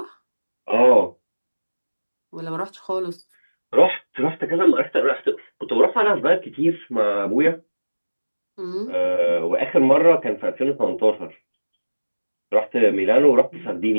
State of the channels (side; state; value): both; inverted; correlation -1.00